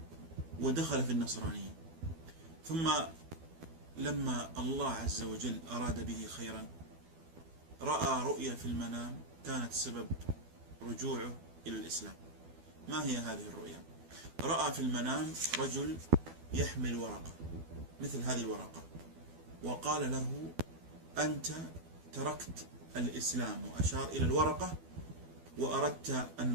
ودخل في النصرانية، ثم لما الله عز وجل أراد به خيرا رأى رؤيا في المنام كانت سبب رجوعه إلى الإسلام. ما هي هذه الرؤيا؟ رأى في المنام رجل يحمل ورقة مثل هذه الورقة، وقال له: أنت تركت الإسلام، وأشار إلى الورقة، وأردت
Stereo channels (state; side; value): late; left; 12 ms